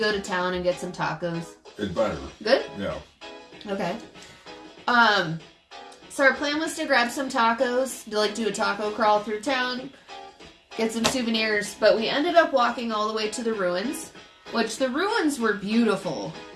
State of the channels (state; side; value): identical; both; correlation 1.00